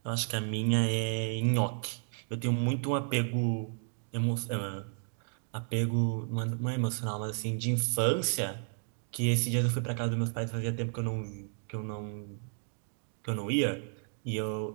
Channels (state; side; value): silent; left; 56 dB below the other